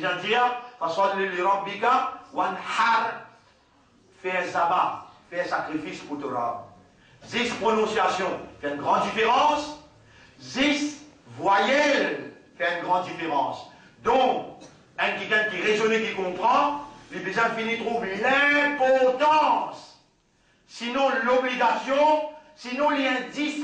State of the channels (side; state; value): both; identical; correlation 1.00